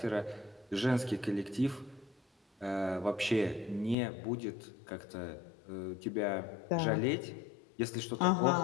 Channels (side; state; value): right; drops out; at 4.0 s